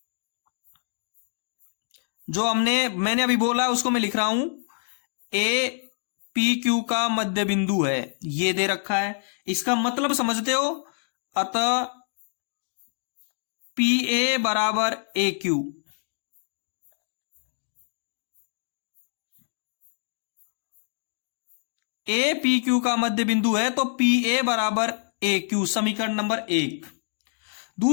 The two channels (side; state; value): right; silent; digital silence